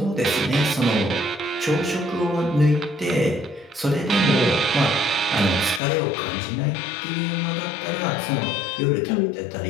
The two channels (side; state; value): right; drops out; at 5.8 s